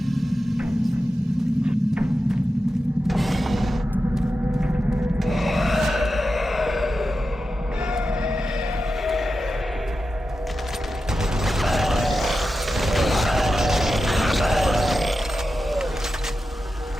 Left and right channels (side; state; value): both; normal; correlation 0.91